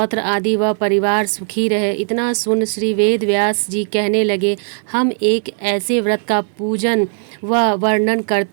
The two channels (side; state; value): left; silent; digital silence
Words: आदि व परिवार सुखी रहे। इतना सुन श्री वेद व्यास जी कहने लगे, हम एक ऐसे व्रत का पूजन व वर्णन